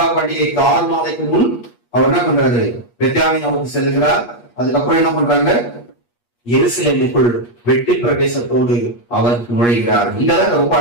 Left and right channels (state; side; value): late; right; 8.4 ms